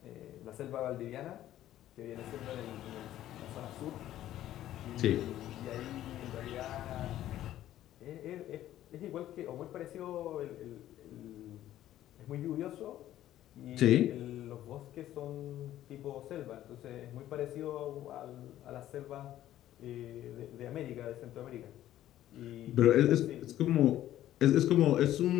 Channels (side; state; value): right; quieter; 13.0 dB